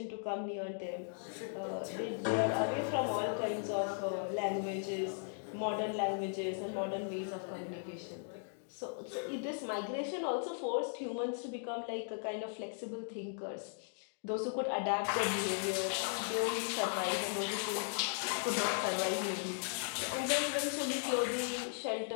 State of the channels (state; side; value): silent; right; digital silence